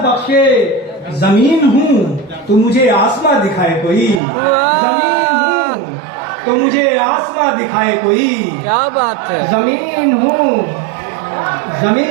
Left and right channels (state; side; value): drops out; left; at 4.2 s